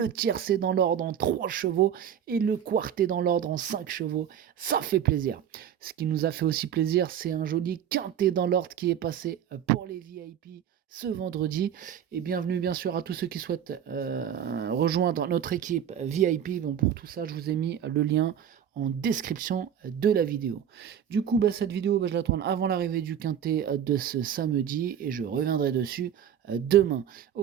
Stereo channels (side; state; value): left; quieter; 9.3 dB